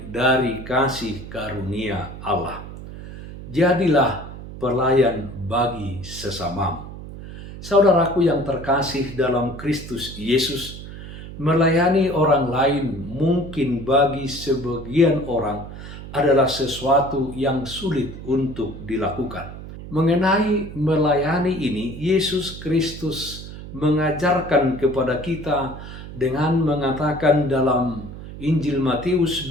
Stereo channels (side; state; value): right; noise; hum, 12 dB below the sound